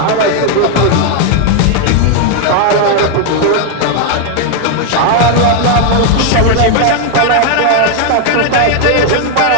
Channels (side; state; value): both; different; correlation 0.01